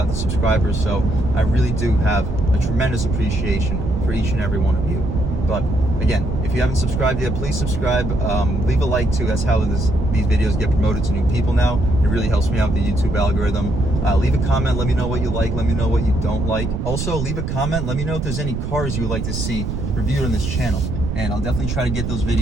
the subscribers, so I really do have a tremendous appreciation for each and every one of you. But again, if you haven't subscribed yet, please subscribe. Leave a like too. That's how these videos get promoted to new people now. It really helps me out with the YouTube algorithm. Leave a comment. Let me know what you like. Let me know what you don't like. Also, leave a comment. Let me know if there's any cars you would like to see reviewed on this channel. And I'll definitely try to get those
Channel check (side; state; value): right; noise; rumble, 3 dB below the sound